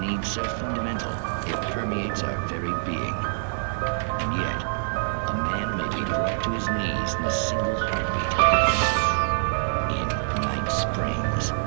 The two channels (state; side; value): silent; left; digital silence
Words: need so fundamental, it permeates our very being. And yet, a man may be brought to his knees in a single heartbeat. In Night Springs.